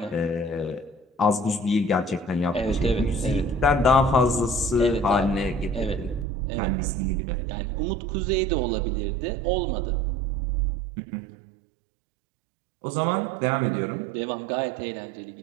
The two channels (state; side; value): drops out; left; at 6.2 s